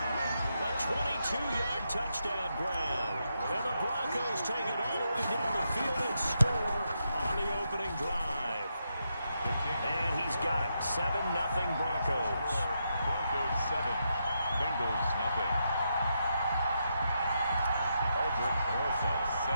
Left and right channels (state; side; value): inverted; both; correlation -0.82